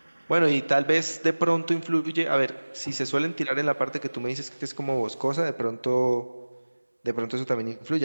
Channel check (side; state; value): both; inverted; correlation -1.00